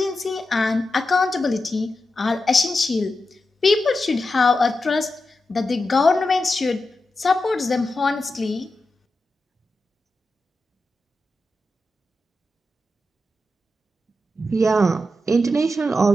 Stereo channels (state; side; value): normal; both; correlation 0.89